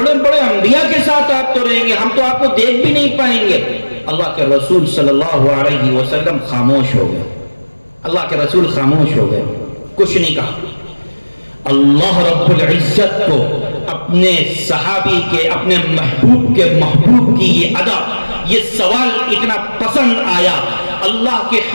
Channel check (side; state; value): both; inverted; correlation -1.00